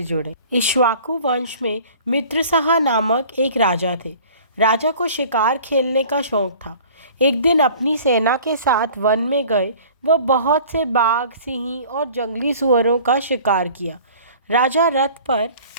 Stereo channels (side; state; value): both; inverted; correlation -0.47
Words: जुड़ें। इक्ष्वाकु वंश में मित्रसहा नामक एक राजा थे। राजा को शिकार खेलने का शौक था। एक दिन अपनी सेना के साथ वन में गए व बहुत से बाघ, सिंह और जंगली सुअरों का शिकार किया। राजा रथ पर